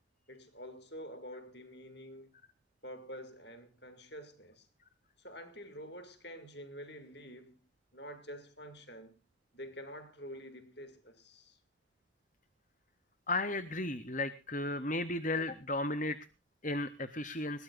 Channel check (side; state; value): both; normal; correlation 0.19